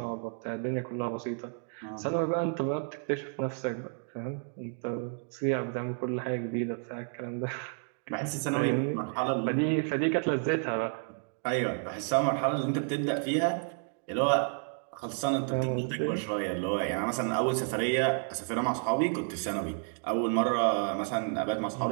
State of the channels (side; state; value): left; silent; 57 dB below the other